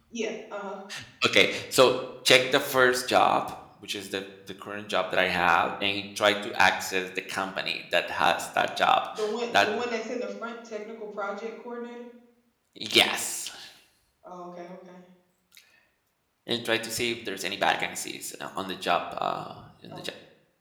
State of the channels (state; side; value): identical; both; correlation 1.00